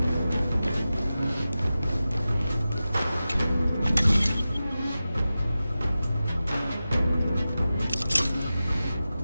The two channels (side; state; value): both; inverted; correlation -0.94